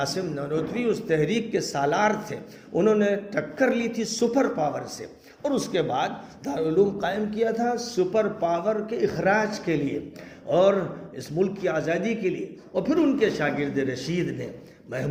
نانوتوی اس تحریک کے سالار تھے. انہوں نے ٹکر لی تھی سپر پاور سے اور اس کے بعد دارالعلوم قائم کیا تھا سپر پاور کے اخراج کے لیے اور اس ملک کی آزادی کے لیے. اور پھر ان کے شاگرد رشید نے،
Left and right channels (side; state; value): both; identical; correlation 1.00